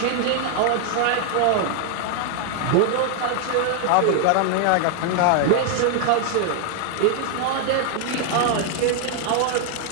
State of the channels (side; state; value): both; different; correlation 0.00